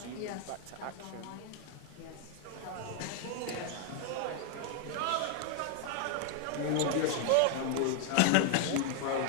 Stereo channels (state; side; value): different; both; correlation 0.00